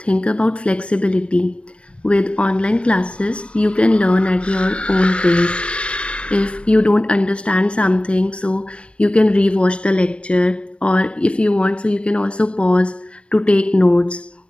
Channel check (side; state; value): right; late; 0.059 ms